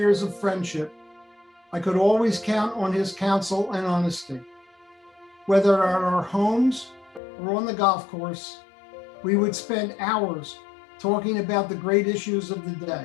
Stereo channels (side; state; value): right; drops out; at 7.2 s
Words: of friendship, I could always count on his counsel and honesty. Whether at our homes or on the golf course, we would spend hours talking about the great issues of the